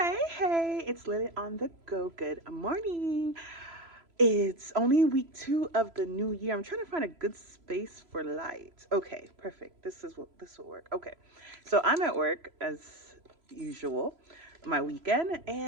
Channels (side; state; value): left; late; 3.0 ms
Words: hey, it's Lily on the go. Good morning. It's only week 2 of the new year. I'm trying to find a good space for light. Okay, perfect. This will work. Okay. So I'm at work as usual, my weekend,